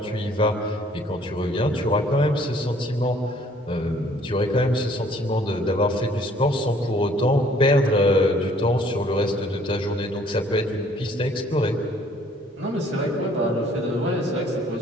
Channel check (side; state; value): both; normal; correlation 0.59